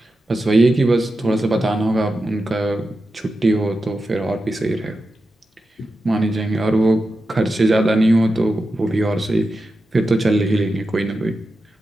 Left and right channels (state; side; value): normal; both; correlation 0.90